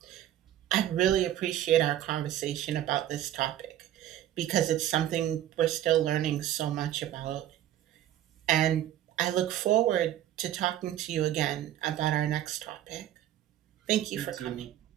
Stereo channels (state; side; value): quieter; left; 12.3 dB